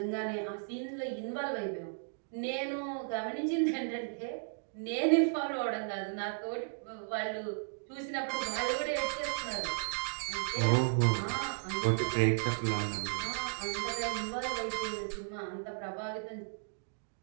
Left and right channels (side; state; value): left; silent; digital silence